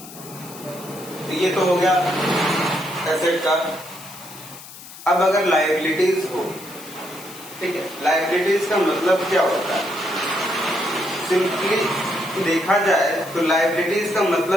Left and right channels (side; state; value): left; noise; hiss, 16 dB below the sound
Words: तो ये तो हो गया एसेट का। अब अगर लायबिलिटीज हो, ठीक है, लायबिलिटीज का मतलब क्या होता है, सिंपली देखा जाए तो लायबिलिटीज का